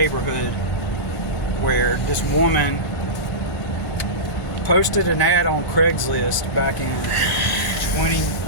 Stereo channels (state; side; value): noise; left; hum, 17 dB below the sound